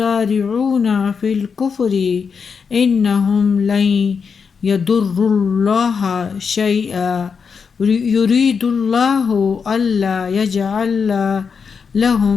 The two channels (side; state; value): right; quieter; 5.9 dB